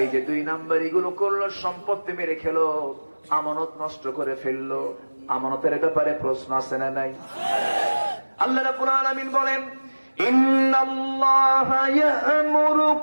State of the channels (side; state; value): both; inverted; correlation -1.00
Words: যে 2 নম্বর এগুলো করলো, সম্পত্তি মেরে খেলো, আমানত নষ্ট করে ফেললো। আমানতের ব্যাপারে প্রশ্ন আছে না নাই? আল্লাহ রাব্বুল আলামিন বলেন, ইন্নাল্লাহা